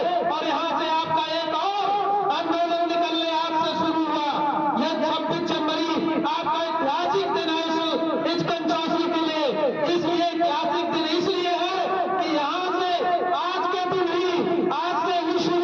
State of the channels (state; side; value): identical; both; correlation 1.00